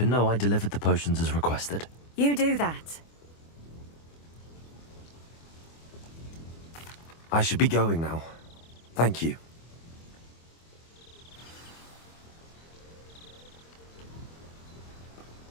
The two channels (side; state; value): right; late; 24 ms